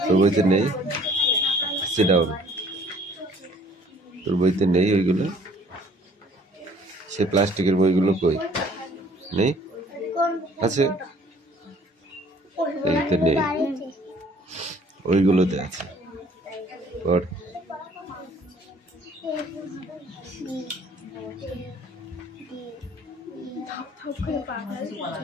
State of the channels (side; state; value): both; normal; correlation 0.56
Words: তোর বইতে নেই সিট ডাউন তোর বইতে নেই ওইগুলো সে প্লাস্টিকের বইগুলো কই নেই আছে এইতে নেই ওইগুলোতে আছে পড়